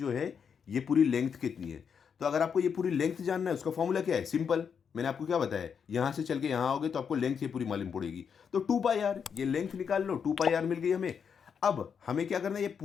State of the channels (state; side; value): quieter; right; 6.9 dB